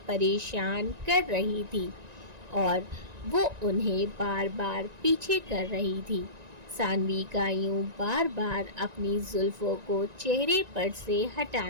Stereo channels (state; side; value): late; left; 1.9 ms